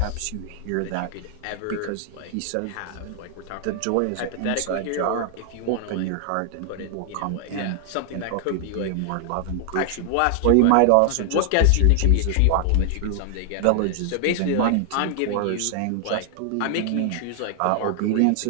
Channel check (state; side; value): different; both; correlation 0.00